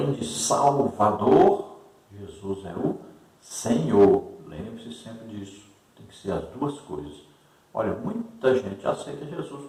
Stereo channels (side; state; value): both; identical; correlation 1.00